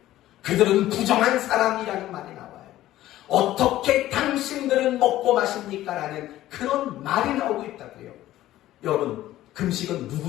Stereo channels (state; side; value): quieter; right; 14.5 dB